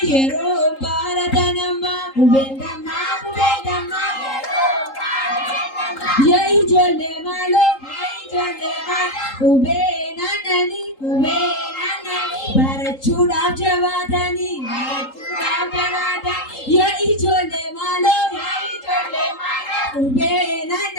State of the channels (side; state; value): right; late; 3.8 ms